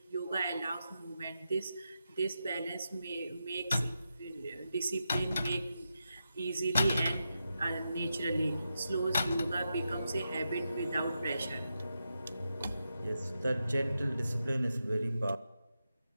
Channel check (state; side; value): inverted; both; correlation -0.88